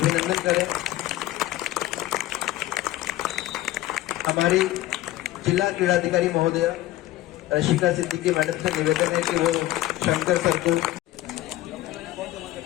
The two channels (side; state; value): right; quieter; 15.6 dB